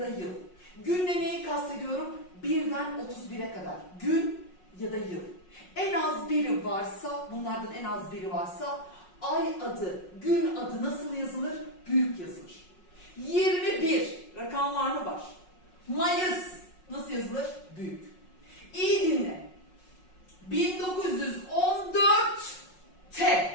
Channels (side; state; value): right; late; 5.5 ms